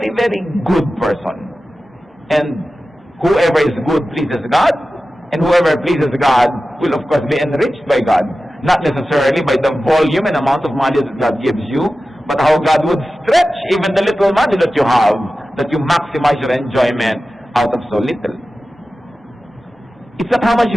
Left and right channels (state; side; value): normal; both; correlation 0.94